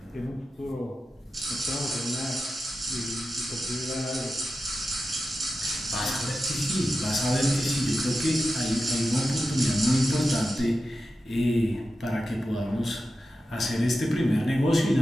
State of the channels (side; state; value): both; normal; correlation 0.91